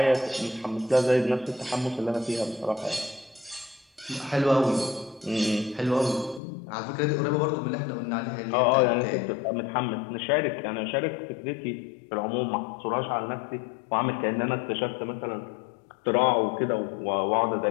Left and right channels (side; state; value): right; drops out; at 6.4 s